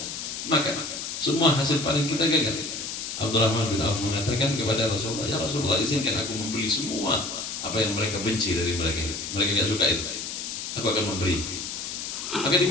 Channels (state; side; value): noise; left; hiss, 6 dB below the sound